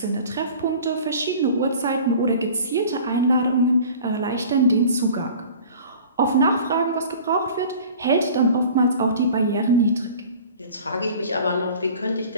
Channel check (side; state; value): both; inverted; correlation -0.43